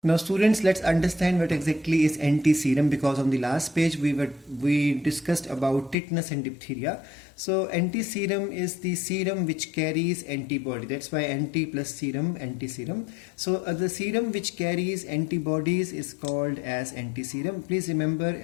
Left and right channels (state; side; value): drops out; right; at 6.0 s